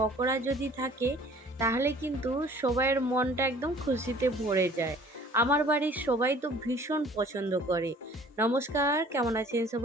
যদি থাকে তাহলে কিন্তু সবাইয়ের মনটা একদম খুশিতে ভরে যায়। আমার বাড়ির সবাই তো ভীষণ পছন্দ করে। নমস্কার, কেমন আছেন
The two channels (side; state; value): both; normal; correlation 0.52